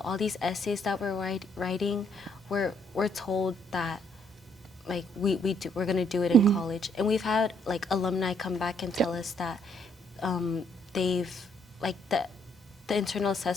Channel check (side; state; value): both; normal; correlation 0.69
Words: all these essays that we're writing, we're told that like we're going to do it in college. And we've had like alumni come back and tell us that they've like the internal